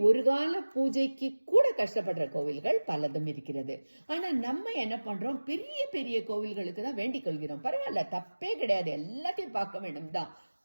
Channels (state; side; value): inverted; both; correlation -1.00